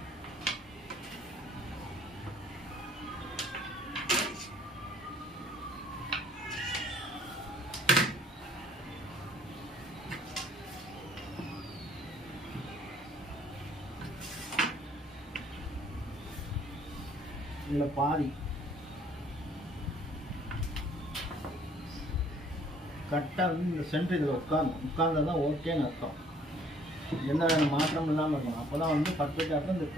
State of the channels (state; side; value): normal; both; correlation 0.59